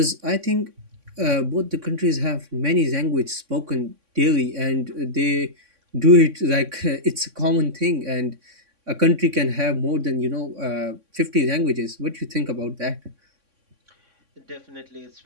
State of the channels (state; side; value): late; left; 3.6 ms